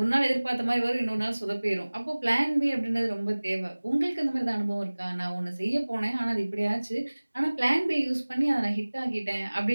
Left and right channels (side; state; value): both; inverted; correlation -1.00